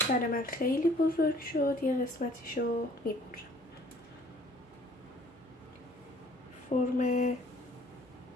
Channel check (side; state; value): both; normal; correlation 0.56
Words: برای من خیلی بزرگ شد، یه قسمتیشو میبرم. فرم